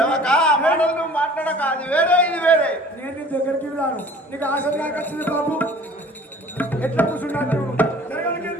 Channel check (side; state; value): both; normal; correlation 0.48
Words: మాట్లాడక అది వేరే ఇది వేరే. నేను నీ దగ్గరికి రాను. నీకు ఆశ నాకు వచ్చింది బాబు. ఎట్లా కూర్చున్నాను